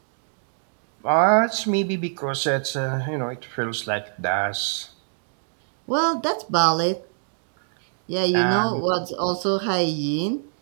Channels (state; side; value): silent; left; digital silence